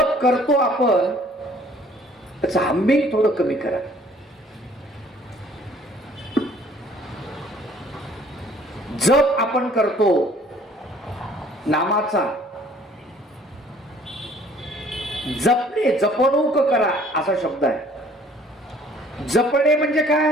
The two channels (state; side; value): normal; both; correlation 0.57